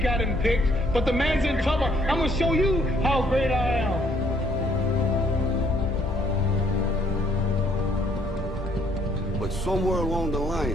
got him picked, but the man's in trouble. I'm gonna show you how great I am. But somewhere along the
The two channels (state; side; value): normal; both; correlation 0.66